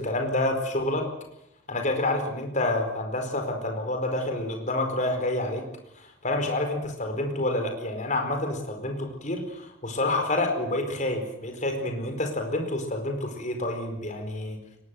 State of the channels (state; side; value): normal; both; correlation 0.06